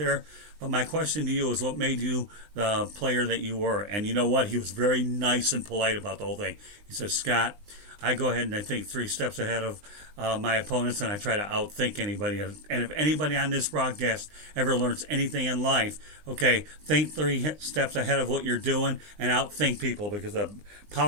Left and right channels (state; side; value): late; left; 20 ms